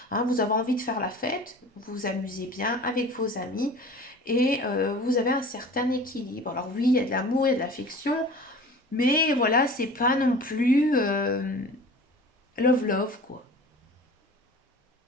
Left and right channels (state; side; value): normal; both; correlation 0.41